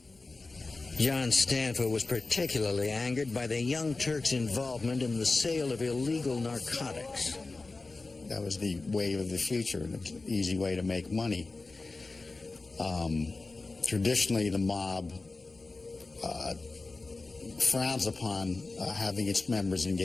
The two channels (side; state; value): right; quieter; 3.5 dB